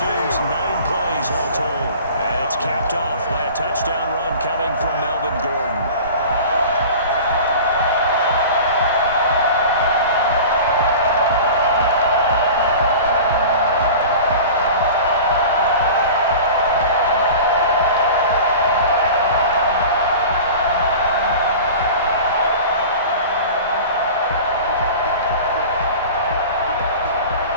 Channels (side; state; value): both; inverted; correlation -0.38